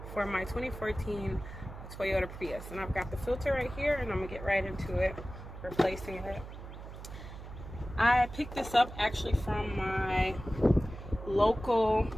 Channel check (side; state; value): right; noise; hum, 12 dB below the sound